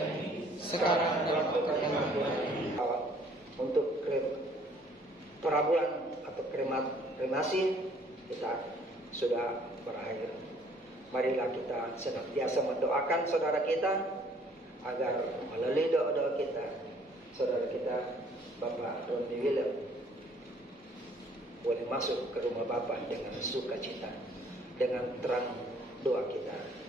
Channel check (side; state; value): both; normal; correlation 0.60